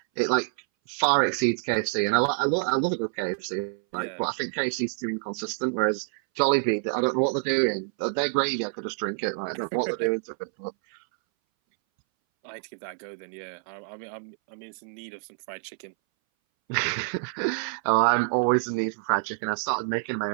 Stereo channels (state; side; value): silent; left; 60 dB below the other